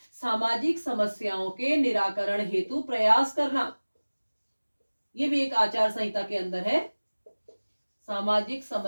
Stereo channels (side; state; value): both; inverted; correlation -1.00